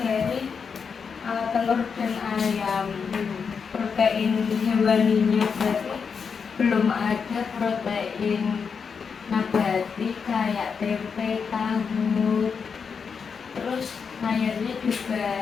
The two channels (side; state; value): right; quieter; 6.0 dB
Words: dari telur dan ayam. Protein hewaninya berarti belum ada protein nabati kayak tempe, tahu. Terus sayurnya